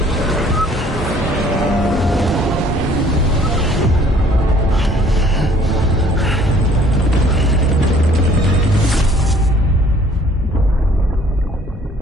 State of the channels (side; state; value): both; normal; correlation 0.57